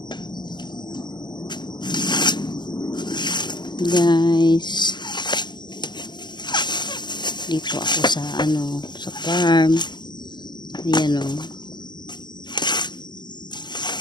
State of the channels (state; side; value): late; right; 0.21 ms